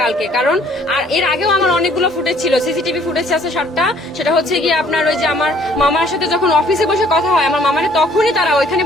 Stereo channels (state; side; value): normal; both; correlation 0.59